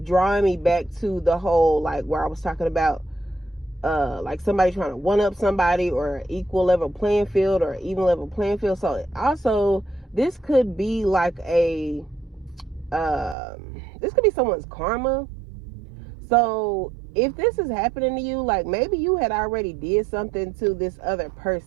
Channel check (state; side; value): drops out; left; at 13.4 s